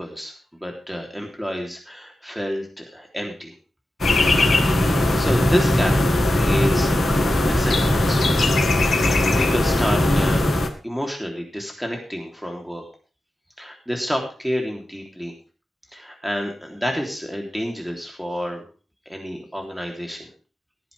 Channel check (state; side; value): normal; both; correlation 0.92